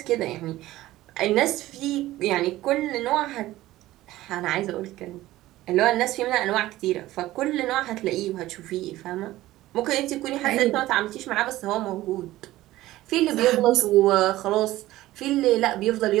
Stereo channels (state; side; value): quieter; left; 16.1 dB